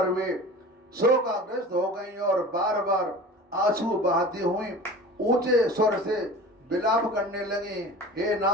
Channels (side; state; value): both; normal; correlation 0.38